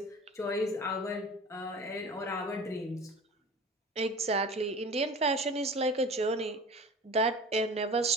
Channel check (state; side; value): normal; both; correlation 0.38